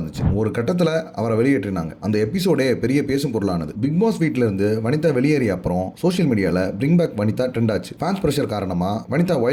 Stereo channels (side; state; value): both; identical; correlation 1.00